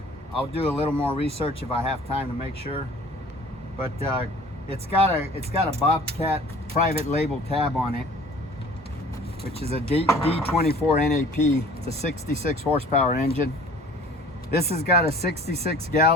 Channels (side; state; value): both; normal; correlation 0.48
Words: do a little more research if I have time to make sure. But it's got a Bobcat private label tab on it, which is a D24 NAP. It's a 66 horsepower engine. This has got a 66